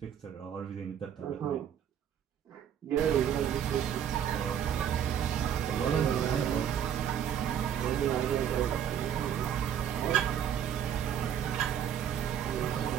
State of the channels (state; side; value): quieter; left; 9.2 dB